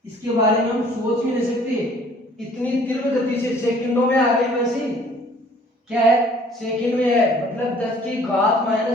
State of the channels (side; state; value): both; normal; correlation 0.55